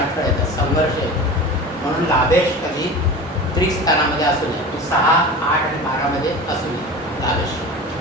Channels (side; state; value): both; normal; correlation 0.33